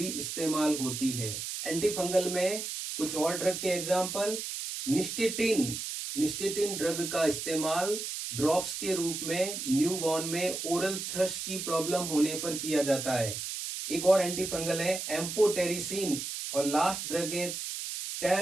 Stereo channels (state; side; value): noise; right; hiss, 5 dB below the sound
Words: इस्तेमाल होती है। एंटीफंगल में कुछ और ड्रग के एग्जाम्पल, निस्टेटिन ड्रग का इस्तेमाल ड्रॉप्स के रूप में न्यूबॉर्न में ओरल थ्रश की प्रॉब्लम होने पर किया जाता है। एक और एंटीफंगल है एम्फोटेरिसिन, और लास्ट ड्रग है